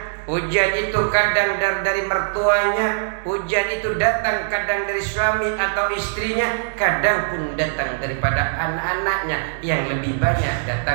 ujian itu kadang dari mertuanya, ujian itu datang kadang dari suami atau istrinya, kadang pun datang daripada anak-anaknya, yang lebih banyak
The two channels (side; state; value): left; silent; digital silence